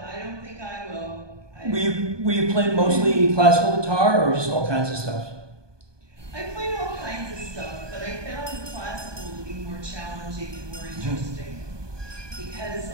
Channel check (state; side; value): late; left; 1.2 ms